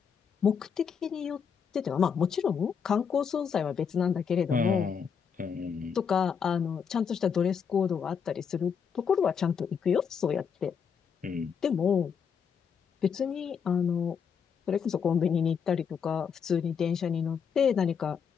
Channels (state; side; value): quieter; right; 6.8 dB